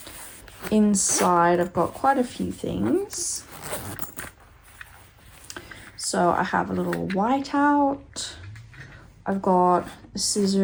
Inside I've got quite a few things. So I have a little whiteout. I've got a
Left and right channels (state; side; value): identical; both; correlation 1.00